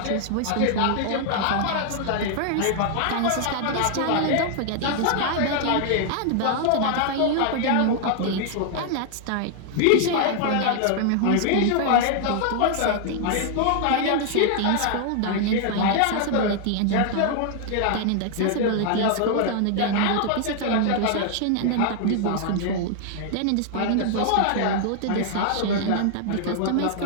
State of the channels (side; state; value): both; different; correlation 0.00